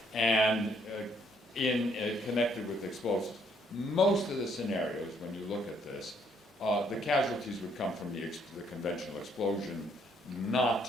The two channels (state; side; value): normal; both; correlation 0.68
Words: and connected with explosives. Most of the scenarios, when you look at this, the casualties would come from the conventional explosion,